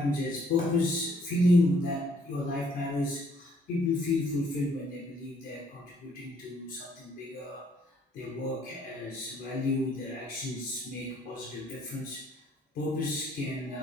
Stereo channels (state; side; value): normal; both; correlation 0.64